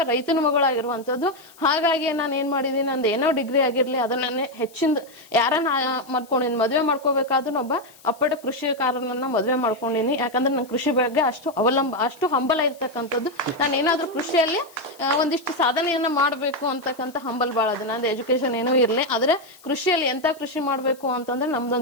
ರೈತನ ಮಗಳಾಗಿರುವಂತದ್ದು. ಹಾಗಾಗಿ ನಾನು ಏನ್ ಮಾಡಿದೀನಿ, ನಂದು ಏನೋ ಡಿಗ್ರಿ ಆಗಿರ್ಲಿ ಅದನ್ನ ಹೆಚ್ಚಿಂದ ಯಾರನ್ನ ಮಾಡ್ಕೊಂಡಿನಿ, ಮದ್ವೆ ಮಾಡ್ಕೋಬೇಕಾದ್ರೂ ಒಬ್ಬ ಅಪ್ಪಟ ಕೃಷಿಕಾರನನ್ನ ಮದ್ವೆ ಮಾಡ್ಕೊಂಡಿನಿ. ಯಾಕಂದ್ರೆ ನನ್ ಕೃಷಿ ಬಗ್ಗೆ ಅಷ್ಟು ಹಂಬಲ ಇರ್ತಕ್ಕಂಥದ್ದು. ನಾನು ಏನಾದ್ರೂ ಕೃಷಿಯಲ್ಲಿ ಒಂದಿಷ್ಟು ಸಾಧನೆಯನ್ನ ಮಾಡ್ಬೇಕು ಅಂತಕ್ಕಂಥ ಹಂಬಲ್ ಬಾಳ ಅದ. ನಂದು ಎಜುಕೇಶನ್ ಏನೂ ಇರ್ಲಿ, ಆದ್ರೆ ಕೃಷಿಯಲ್ಲಿ ಎಂತ ಕೃಷಿ ಮಾಡ್ಬೇಕು ಅಂತಂದ್ರೆ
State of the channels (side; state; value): left; noise; hiss, 25 dB below the sound